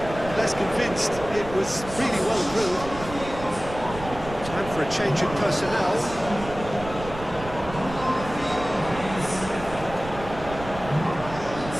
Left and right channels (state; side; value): noise; right; rumble, 12 dB below the sound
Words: less convinced. It was really well drilled. Time for a change in personnel.